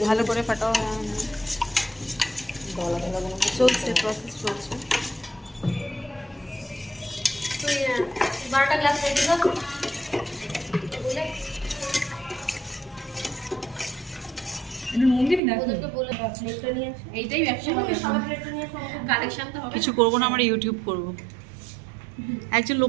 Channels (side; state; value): left; drops out; at 15.4 s